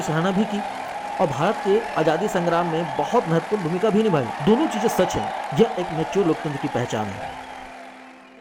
सराहना भी की और भारत के आज़ादी संग्राम में बहुत महत्वपूर्ण भूमिका भी निभाई। दोनों चीज़ें सच हैं। यह एक मैच्योर लोकतंत्र की पहचान है।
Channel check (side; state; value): both; identical; correlation 1.00